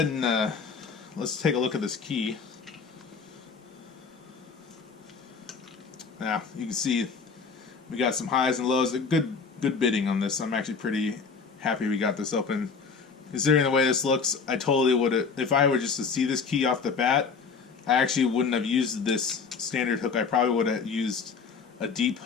and let's take a look at this key. Now you can see we got some highs and lows. Good bidding on this. I'm actually pretty happy we got this open. Considering the way this looks, I totally would have, if I were just to see this key off the bat, I actually wouldn't have used this standard hook. I probably would have used a deep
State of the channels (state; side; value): quieter; right; 5.3 dB